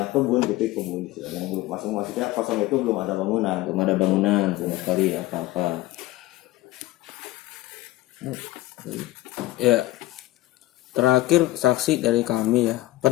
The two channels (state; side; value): quieter; right; 17.2 dB